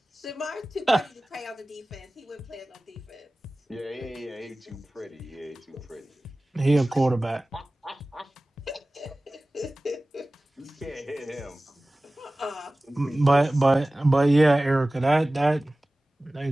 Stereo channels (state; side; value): normal; both; correlation 0.98